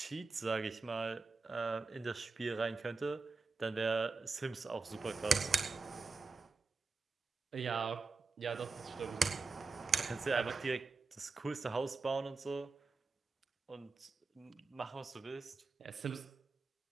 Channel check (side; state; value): left; quieter; 4.0 dB